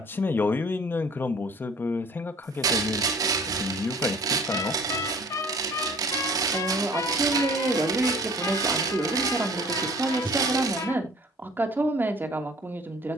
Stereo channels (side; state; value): both; normal; correlation 0.51